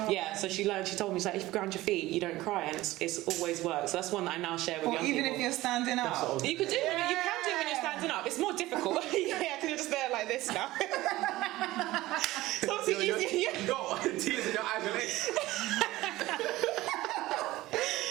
yeah, so she told me, she's like, if you ground your feet, you don't cry, and it's always worked. So that's one that I now share with young people. Even if you're standing up, you can do it. You can do it when you're standing up. It's more difficult. Yeah, because you're just there like this now. So obviously easier. You got tears in your eyes and legs.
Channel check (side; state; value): left; quieter; 17.6 dB